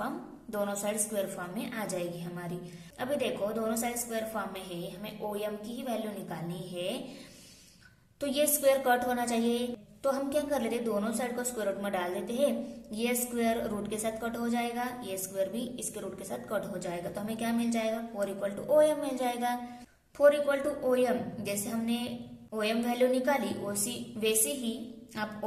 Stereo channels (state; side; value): identical; both; correlation 1.00